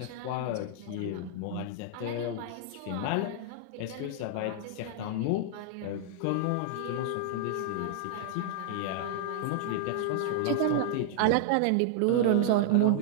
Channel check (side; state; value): both; different; correlation -0.01